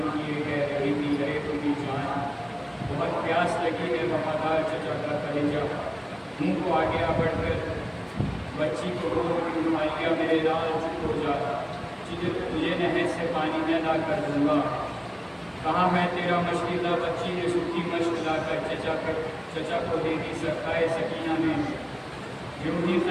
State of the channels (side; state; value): both; identical; correlation 1.00